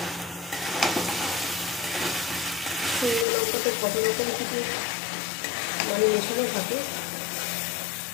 শুকনো লঙ্কাতে কত রকম কিছু মেশানো থাকে,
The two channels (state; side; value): drops out; right; at 3.2 s